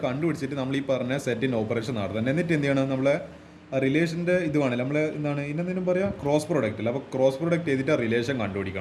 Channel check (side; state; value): both; identical; correlation 1.00